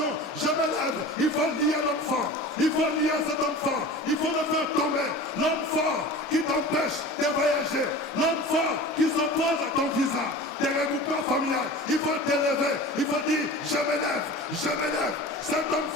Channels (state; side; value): normal; both; correlation 0.36